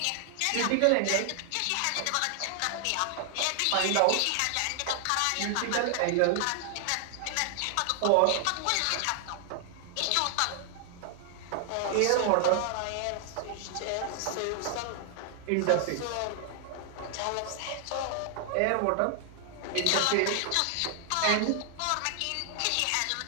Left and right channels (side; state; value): both; different; correlation 0.00